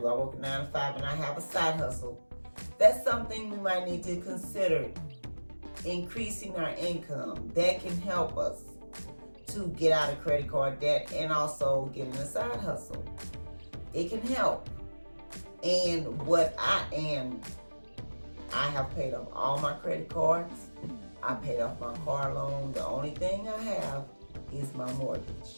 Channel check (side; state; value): both; inverted; correlation -1.00